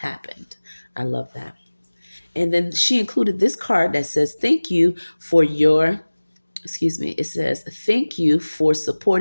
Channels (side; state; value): both; inverted; correlation -1.00